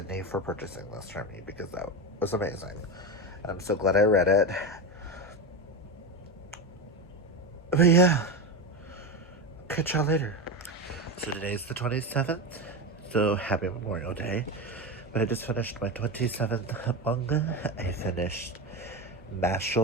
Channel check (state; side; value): normal; both; correlation 0.18